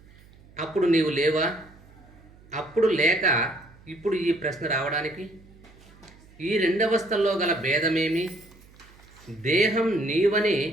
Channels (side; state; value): right; noise; hum, 25 dB below the sound